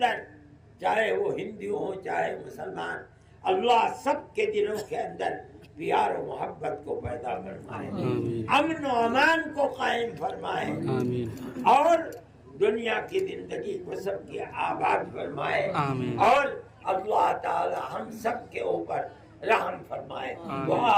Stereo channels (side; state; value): both; identical; correlation 1.00